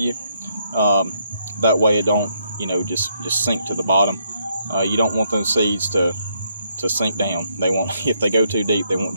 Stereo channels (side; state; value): both; inverted; correlation -0.75